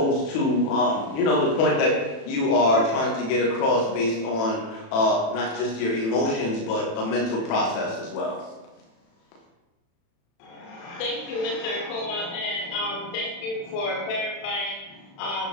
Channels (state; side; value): late; right; 36 ms